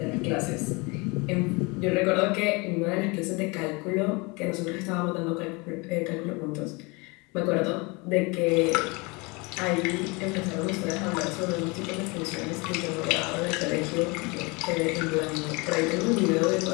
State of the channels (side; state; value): right; quieter; 27.5 dB